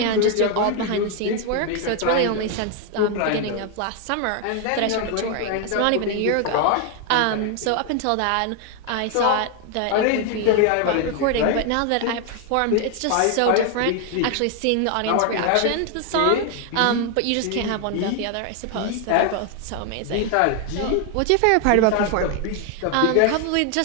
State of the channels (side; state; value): both; different; correlation 0.01